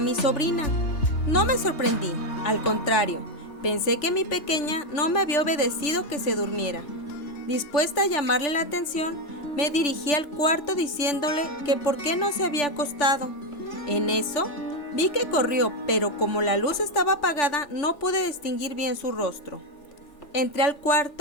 sobrina. No me sorprendí, al contrario, pensé que mi pequeña no me había obedecido que se durmiera. Dispuesta a llamarle la atención, me dirigí al cuarto diciéndole que por qué no se había acostado. En eso, vi que corrió, pero como la luz estaba apagada, no pude distinguir bien su rostro. Entré al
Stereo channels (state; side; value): late; right; 3.4 ms